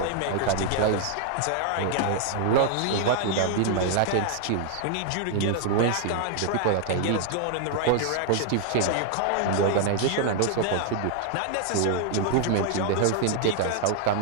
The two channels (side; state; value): both; different; correlation 0.00